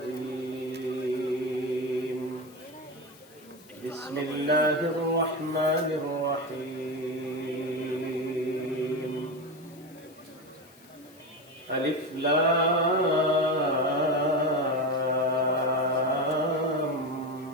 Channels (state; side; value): noise; left; hiss, 26 dB below the sound